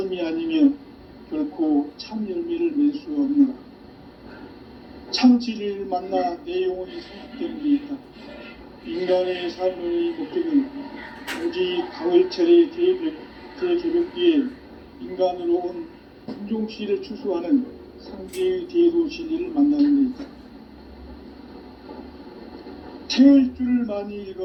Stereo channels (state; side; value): identical; both; correlation 1.00